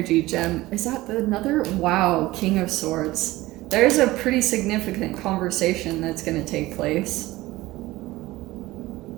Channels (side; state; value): left; quieter; 18.4 dB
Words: gem. Is that another? Wow, King of Swords. There's a pretty significant conversation that's gonna take place.